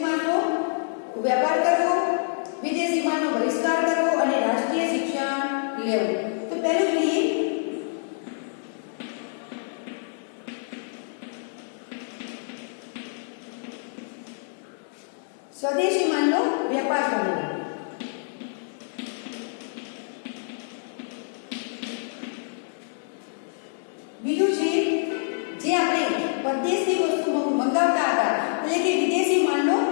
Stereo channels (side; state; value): right; silent; digital silence